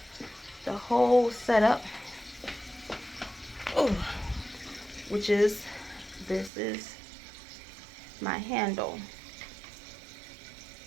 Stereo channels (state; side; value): drops out; left; at 6.5 s